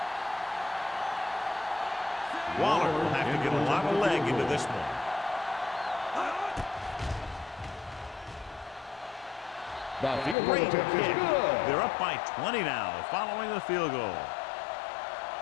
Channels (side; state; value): right; drops out; at 10.4 s